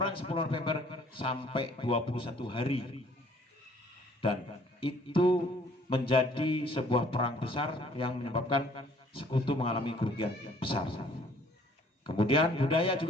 10 November sampai 21 hari. Dan itu menjadi sebuah perang besar yang menyebabkan sekutu mengalami kerugian besar. Kemudian budaya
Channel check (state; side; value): normal; both; correlation 0.58